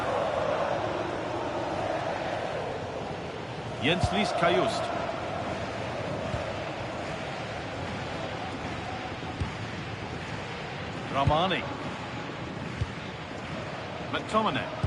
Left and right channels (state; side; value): identical; both; correlation 1.00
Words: Jens-Lys Kajust. Ramani. McTominay.